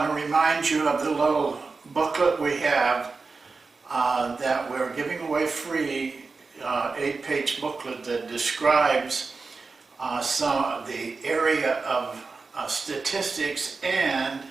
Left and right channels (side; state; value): left; quieter; 4.3 dB